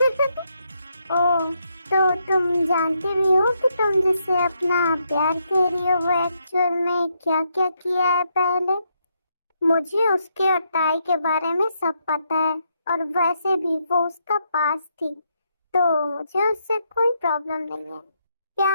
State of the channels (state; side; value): inverted; both; correlation -0.78